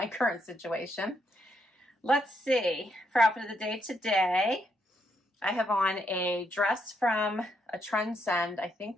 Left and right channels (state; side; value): normal; both; correlation 0.77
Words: current situation. Let's see, for outfit of the day today, I have on a dress from a Trendsend, I